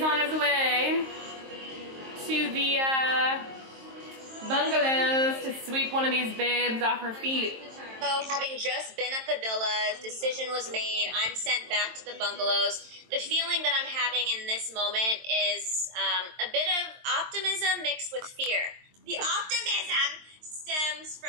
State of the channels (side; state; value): left; late; 23 ms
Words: on his way to the bungalows to sweep one of these babes off her feet. So having just been at the villas, decision was made, I'm sent back to the bungalows. The feeling that I'm having in this moment is a bit of optimism mixed with fear. The optimism stems